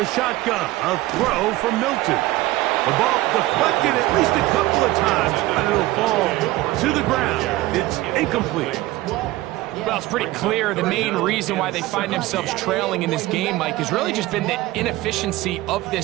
shotgun, a throw from Milton. The ball deflected at least a couple of times, and it'll fall to the ground. It's incomplete. Well, it's pretty clear the main reason why they find themselves trailing in this game, Mike, has really just been the inefficiency of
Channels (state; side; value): quieter; left; 17.7 dB